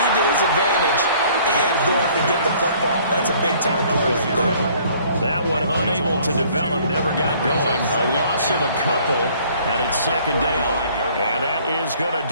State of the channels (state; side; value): inverted; both; correlation -0.57